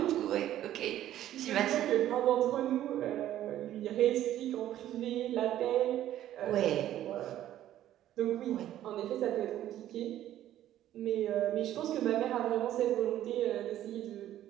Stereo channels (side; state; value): left; quieter; 12.5 dB